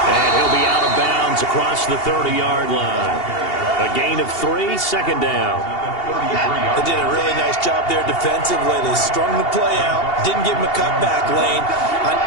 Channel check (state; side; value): late; right; 2.8 ms